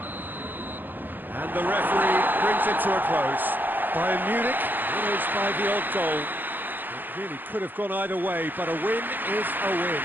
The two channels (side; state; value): left; late; 0.090 ms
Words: And the referee brings it to a close. Bayern Munich winners by the odd goal. It really could have gone either way, but a win is a win.